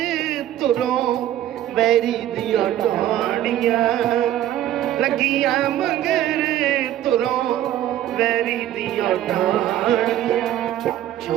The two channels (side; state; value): left; quieter; 12.6 dB